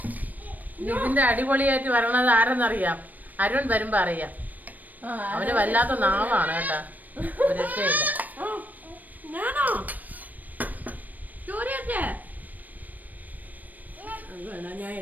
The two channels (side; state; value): left; late; 0.082 ms